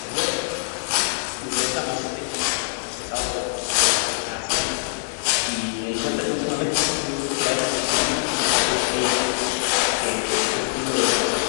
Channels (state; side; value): silent; right; 57 dB below the other